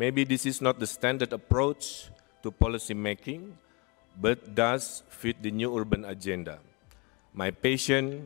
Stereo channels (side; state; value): right; quieter; 29.1 dB